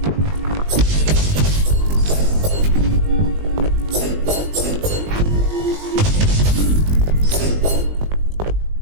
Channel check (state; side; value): late; left; 20 ms